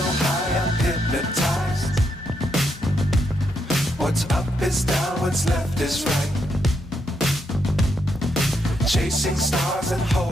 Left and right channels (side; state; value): both; normal; correlation 0.79